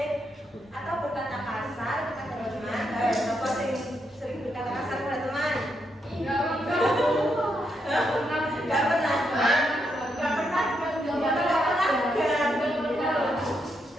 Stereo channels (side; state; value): both; normal; correlation 0.80